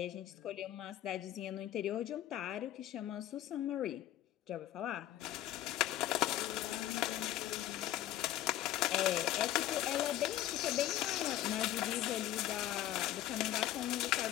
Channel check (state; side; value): quieter; right; 13.1 dB